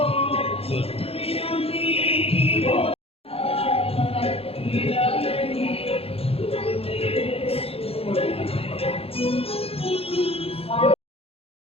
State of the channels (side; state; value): right; late; 0.28 ms